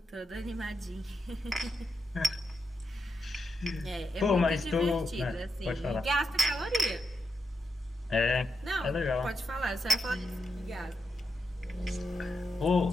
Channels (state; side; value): normal; both; correlation 0.85